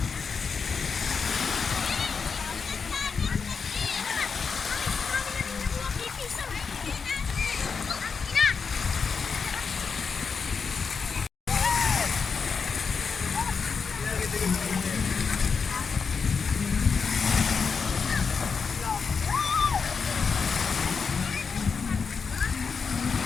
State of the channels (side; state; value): right; quieter; 5.5 dB